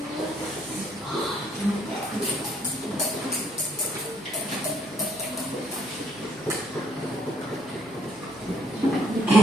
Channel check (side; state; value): both; normal; correlation 0.68